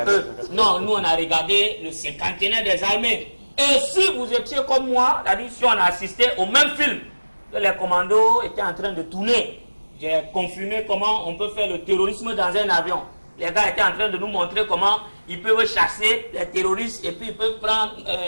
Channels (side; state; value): both; inverted; correlation -1.00